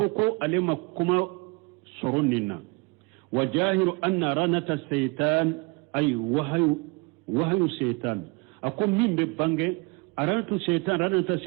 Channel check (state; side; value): quieter; left; 28.1 dB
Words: alima kuma sorunina wajahiru anna ranata shaytan ay wahyu shaytan akom mimbe bange ranata